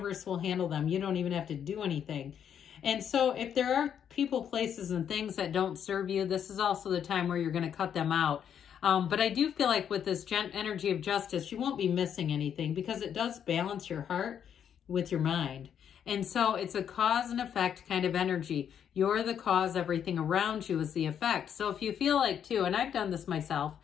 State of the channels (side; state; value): right; quieter; 8.7 dB